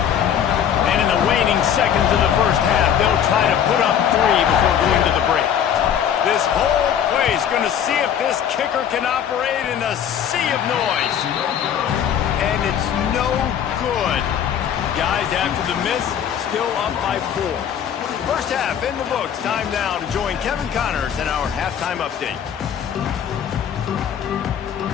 And in the waning seconds of the first half, they'll try to put up 3 before going to the break. This whole play is going to see if this kicker can operate in a sea of noise. And it's no good. Guys, after the miss, still up by 4. First half in the books. Time now to join Kevin Connors in our halftime update.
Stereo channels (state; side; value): quieter; right; 9.0 dB